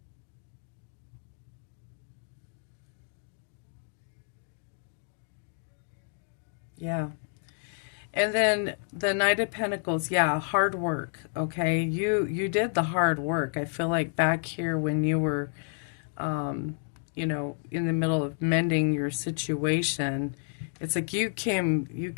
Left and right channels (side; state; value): right; silent; digital silence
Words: Yeah. And then the Knight of Pentacles, yeah, hard work, okay? You did the hard work. I feel like back here when you were, in the middle of mending your situation, it's like you